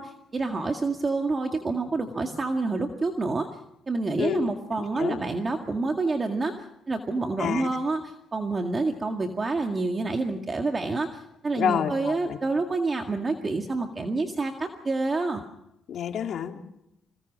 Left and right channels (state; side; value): normal; both; correlation 0.86